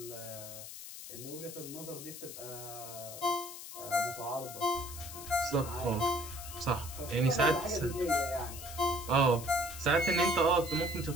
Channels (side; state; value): left; noise; hiss, 11 dB below the sound